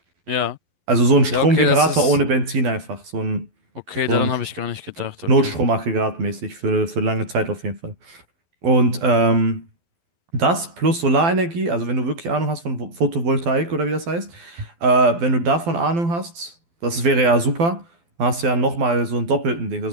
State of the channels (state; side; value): late; left; 12 ms